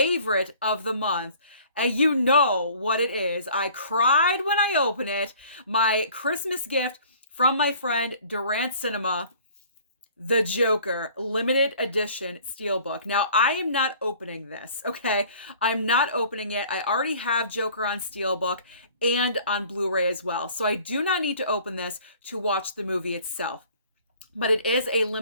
of the month. And you know what it is. I cried when I opened it. My Christmas gift from my friend Durant Cinema, The Joker limited edition Steelbook. Now, I am not opening this, okay? I'm not opening it. I already have Joker on Steelbook and on Blu-ray as well. So I do not need to open this to watch the movie itself. But it is a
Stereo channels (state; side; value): inverted; both; correlation -0.51